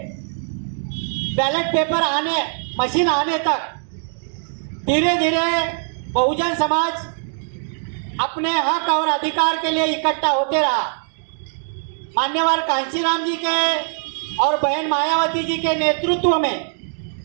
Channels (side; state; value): left; silent; digital silence